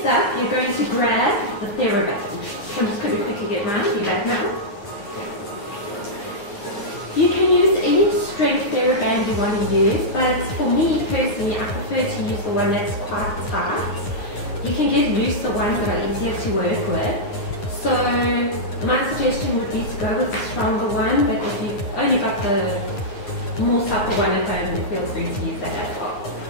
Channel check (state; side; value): late; right; 9.9 ms